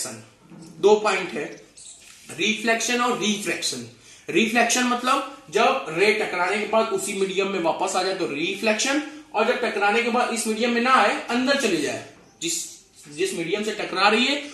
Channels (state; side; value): identical; both; correlation 1.00